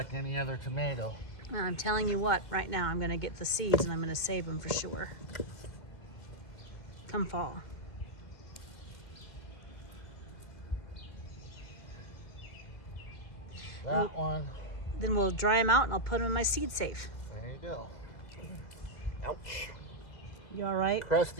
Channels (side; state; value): right; late; 2.2 ms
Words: any other tomato. I'm telling you what, right now I'm gonna get the seeds and I'm gonna save them for sure. Come fall. that one. Then we'll dry them out and I'll put them in my seed safe. There you go. Ouch. You all right?